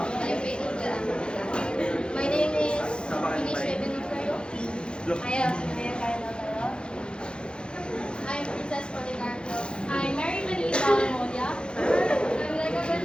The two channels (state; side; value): late; right; 0.052 ms